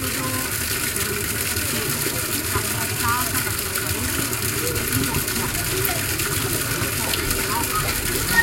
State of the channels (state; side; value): identical; both; correlation 1.00